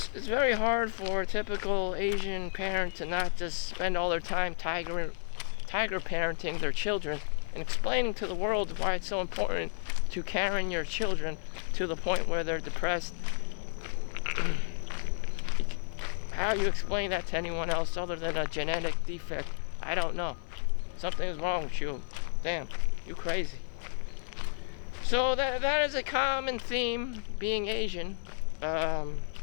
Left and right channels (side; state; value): right; silent; 57 dB below the other